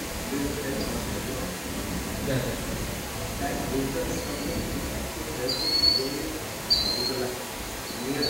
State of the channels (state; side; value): identical; both; correlation 1.00